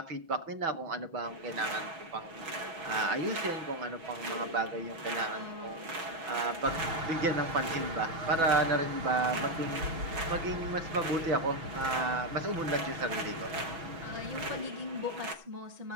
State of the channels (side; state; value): left; late; 6.1 ms